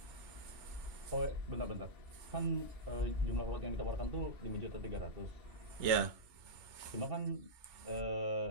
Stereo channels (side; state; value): left; late; 3.4 ms